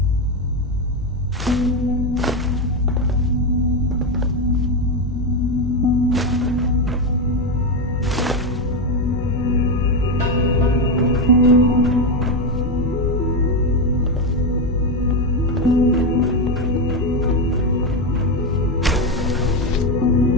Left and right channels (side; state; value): both; normal; correlation 0.10